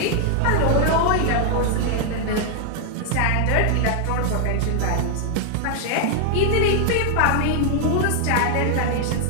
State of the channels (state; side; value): different; both; correlation 0.00